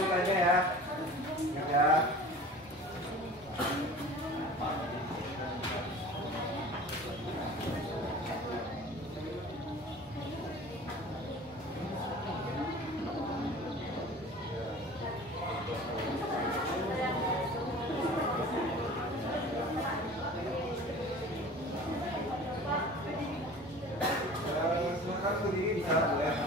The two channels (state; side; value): normal; both; correlation 0.41